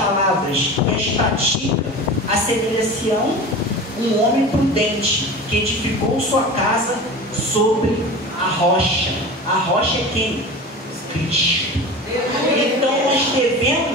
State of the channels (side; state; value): both; normal; correlation 0.33